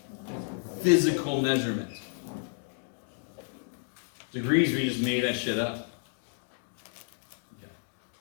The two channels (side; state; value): right; silent; digital silence